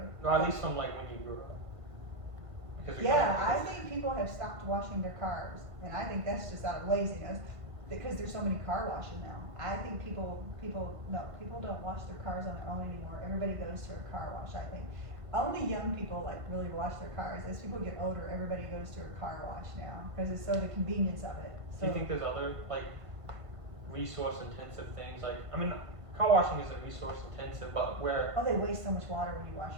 Or at least from like when you grew up. Because I think people have stopped washing their cars, and I think that's just out of laziness, because there's so many car washes now. I think people don't wash their cars on their own anymore. Everybody goes to a car wash, I think. Only young people like really wash their cars. As people get older, everybody goes to a car wash now, because it's so the convenience of it. So, do you think there's other like resource intensive things? Like, I mean, car washing isn't resource intensive, but where. Oh, they waste so much water when you wash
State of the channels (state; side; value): late; left; 1.5 ms